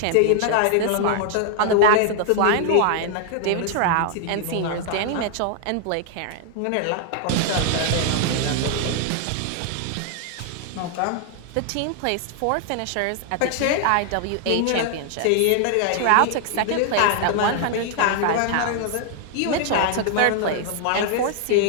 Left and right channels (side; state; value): both; different; correlation 0.00